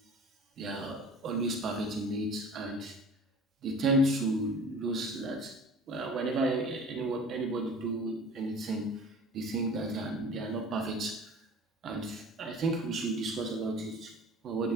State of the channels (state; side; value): normal; both; correlation 0.43